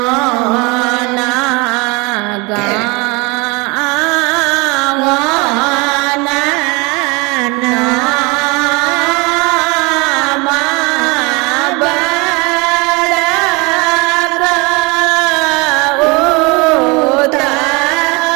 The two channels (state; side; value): quieter; left; 27.2 dB